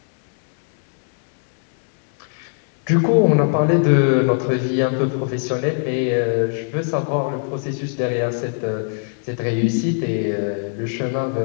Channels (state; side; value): silent; right; 60 dB below the other